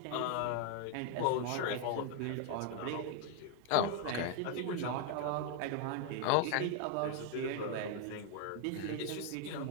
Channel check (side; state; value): both; different; correlation 0.01